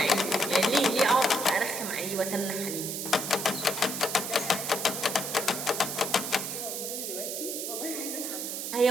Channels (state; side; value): noise; right; hiss, 4 dB below the sound